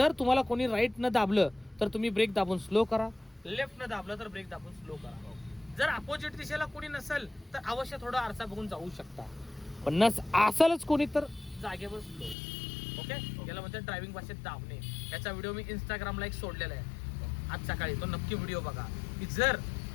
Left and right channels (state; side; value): drops out; right; at 12.4 s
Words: तुम्हाला कोणी राईट न दाबलं तर तुम्ही ब्रेक दाबून स्लो करा, लेफ्ट न दाबलं तर ब्रेक दाबून स्लो करा. जर अपोजिट दिशेला कोणी नसेल तर अवश्य थोडा आरसा बघून जाऊ शकता, पण नस असेलच कोणी तर जागेवर स्लो. ओके, याला म्हणतात ड्रायव्हिंग भाषेत दाबणे. याचा व्हिडिओ मी इंस्टाग्रामला एक सोडलेला आहे आज सकाळी, तो नक्की व्हिडिओ बघा. की जर